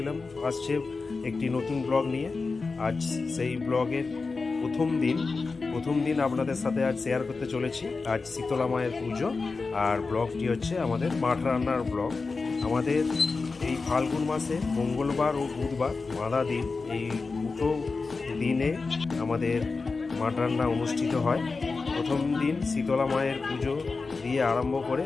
আসছে একটি নতুন ব্লগ নিয়ে। আজ সেই ব্লগের প্রথম দিন আপনাদের সাথে আজ শেয়ার করতে চলেছি। আজ শীতলা মায়ের পুজো, আর ব্লগটি হচ্ছে আমাদের মাঠ রান্নার ব্লগ। আমাদের এই ফাল্গুন মাসে মঙ্গলবার ও বুধবার বাঁধা দিন, এই দুটো দিনে আমাদের মাঠ রান্না অনুষ্ঠিত হয়। প্রথম দিন শীতলা মায়ের পুজো দিয়ে আরম্ভ করে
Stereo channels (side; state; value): right; quieter; 4.2 dB